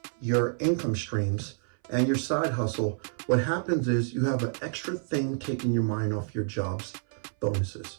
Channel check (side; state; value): left; silent; 58 dB below the other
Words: your income streams and your side hustle, what happens is you have an extra thing taking your mind off your job's bonuses.